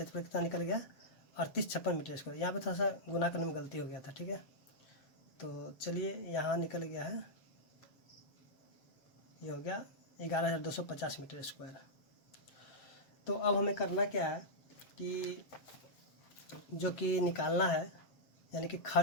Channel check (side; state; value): right; late; 7.3 ms